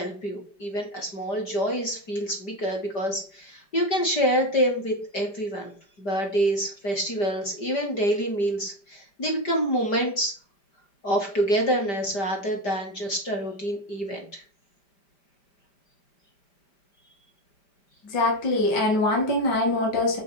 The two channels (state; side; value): late; right; 5.1 ms